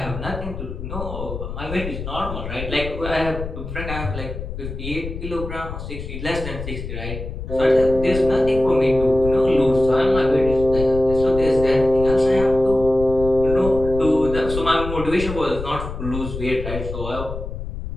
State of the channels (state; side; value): noise; left; rumble, 8 dB below the sound